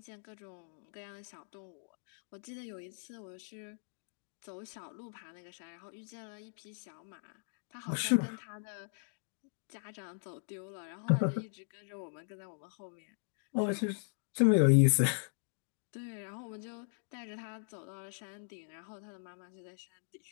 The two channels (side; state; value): right; silent; digital silence